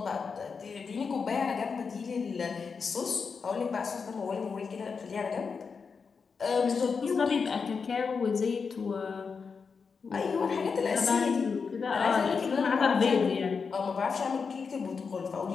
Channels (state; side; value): quieter; right; 5.4 dB